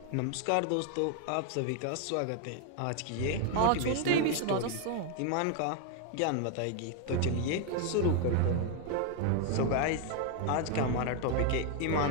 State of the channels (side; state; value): both; different; correlation 0.00